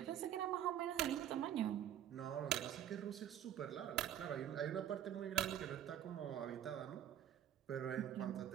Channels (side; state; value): left; quieter; 10.7 dB